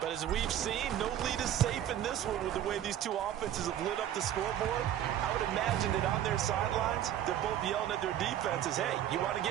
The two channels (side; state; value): left; quieter; 11.2 dB